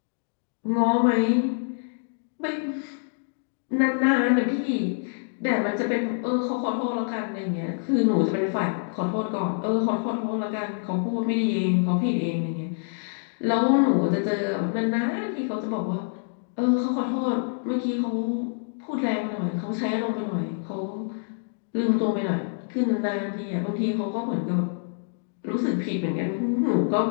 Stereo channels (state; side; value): silent; right; digital silence